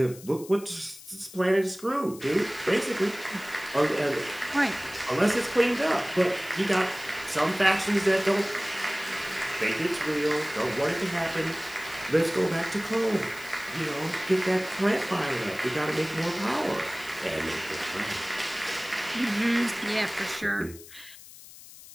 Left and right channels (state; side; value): noise; left; hiss, 18 dB below the sound